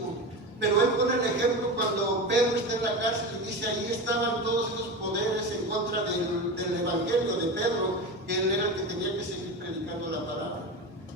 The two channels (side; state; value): both; normal; correlation 0.24